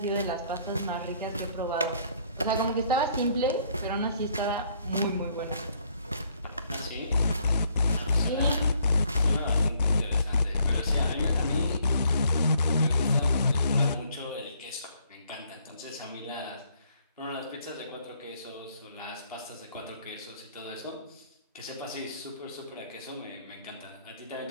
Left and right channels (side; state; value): both; inverted; correlation -0.65